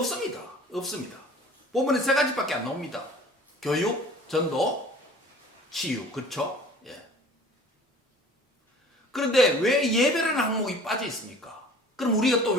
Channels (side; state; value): both; normal; correlation 0.47